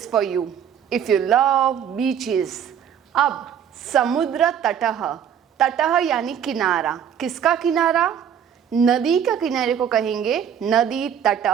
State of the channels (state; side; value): quieter; left; 8.6 dB